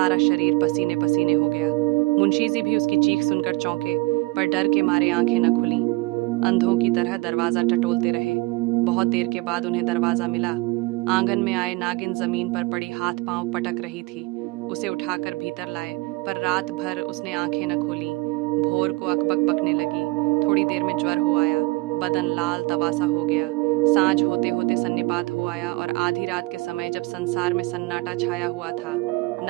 शरीर पसीने पसीने हो गया। मुंशी जी भी उसकी चीख सुनकर चौंके, पर डर के मारे आंखें न खुली। अंधों की तरह दरवाजा टटोलते रहे। बहुत देर के बाद उन्हें दरवाजा मिला। आंगन में आए नागिन जमीन पर पड़ी हाथ पांव पटक रही थी। उसे उठाकर भीतर लाए, पर रात भर उसने आंखें न खोली। भोर को अकबक बकने लगी। थोड़ी देर में ज्वर हो आया, बदन लाल तवासा हो गया। सांझ होते होते सन्निपात हो आया और आधी रात के समय जब संसार में सन्नाटा छाया हुआ था,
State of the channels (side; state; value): left; quieter; 23.7 dB